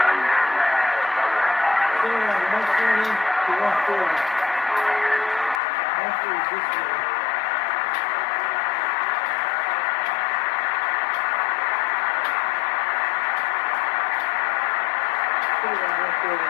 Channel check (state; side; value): drops out; right; at 5.6 s